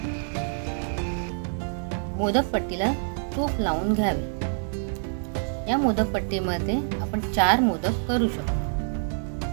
मोदक पट्टीला तूप लावून घ्यावे। या मोदक पट्टीमध्ये आपण 4 मोदक करू शकतो।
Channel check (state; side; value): silent; left; digital silence